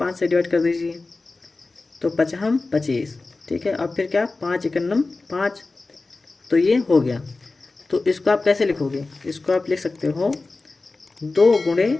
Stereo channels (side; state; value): right; quieter; 3.5 dB